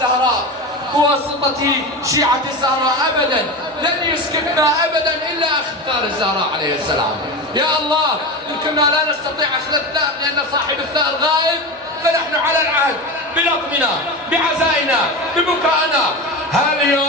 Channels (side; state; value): both; normal; correlation 0.23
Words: بواسطة شيعة الزهراء ابدا، لن يسكتنا ابدا الا اختار الزهراء عليه السلام. يا الله ان كنا لا نستطيع اخذ الثأر لان صاحب الثأر غائب، فنحن على العهد بلطمنا بعزائنا ببكائنا.